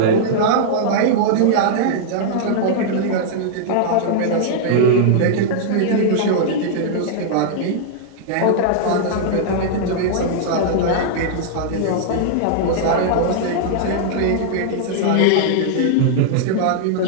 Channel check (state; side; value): different; both; correlation -0.01